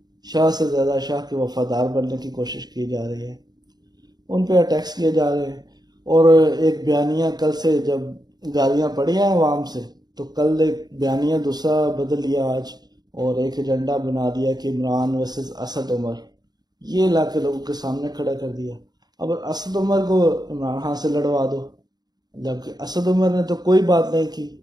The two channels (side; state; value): left; late; 0.20 ms